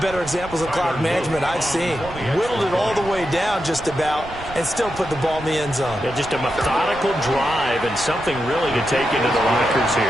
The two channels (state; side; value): noise; right; rumble, 15 dB below the sound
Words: better examples of clock management I've seen. Whittled it all the way down just about and still put the ball in the end zone. Yeah, just a methodical drive and something really to take into the lockers